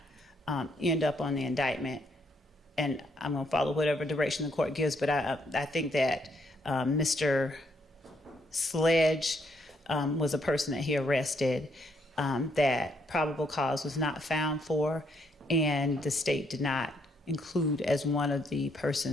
end up on the indictment. And I'm going to follow whatever direction the court gives, but I think that Mr. Sledge was a person that he arrested that probable cause was not found for, and the state did not include as one of the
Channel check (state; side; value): normal; both; correlation 0.73